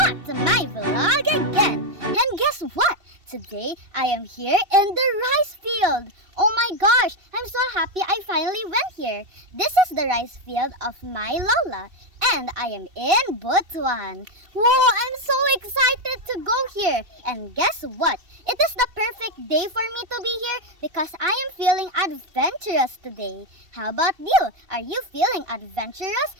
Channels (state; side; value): late; left; 2.7 ms